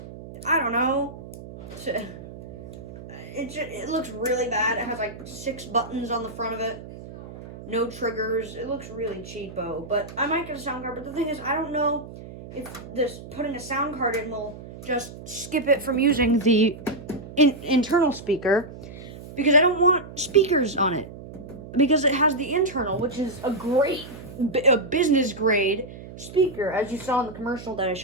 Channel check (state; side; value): noise; right; hum, 14 dB below the sound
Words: don't know. It looks really bad. It has like 6 buttons on the front of it. No triggers. It looks really cheapo, but I might get a sound card. But the thing is, I don't know if this putting a sound card in will just skip it from using the internal speaker, because I don't want speakers on it, because it has the internal, which is a business grade speaker. As you saw in the commercial that I